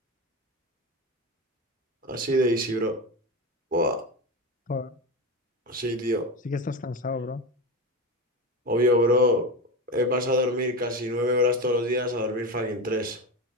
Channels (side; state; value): both; normal; correlation 0.20